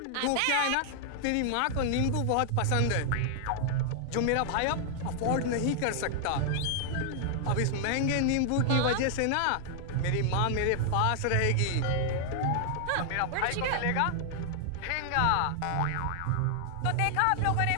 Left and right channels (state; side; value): different; both; correlation 0.00